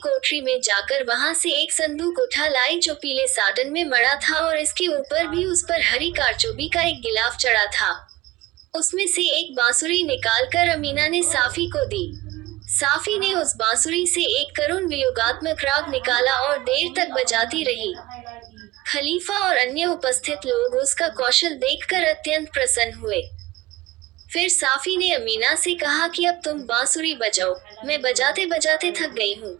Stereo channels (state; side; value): quieter; left; 17.8 dB